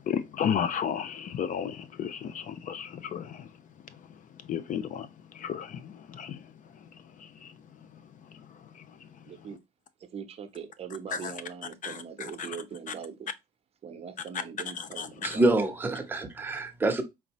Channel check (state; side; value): normal; both; correlation 0.50